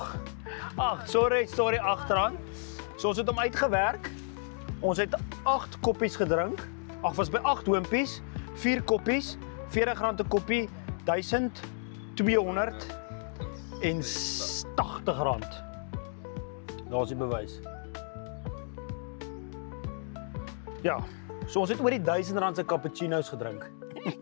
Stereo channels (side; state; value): right; silent; 57 dB below the other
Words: Ag, sorry agteraan. So ons het hom uitgewerk. Ons het 8 koppies gedrink. Ag, was by 8 hoompies, 4 koppies, R40 'n koppie, R1280. Daar's die bewys. Ja, so ons het oor die R1000 se cappuccino's gedrink.